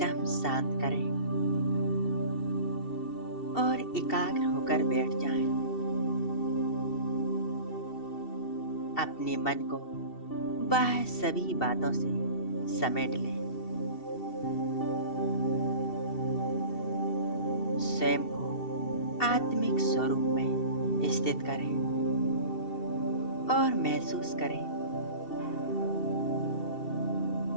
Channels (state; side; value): late; right; 2.7 ms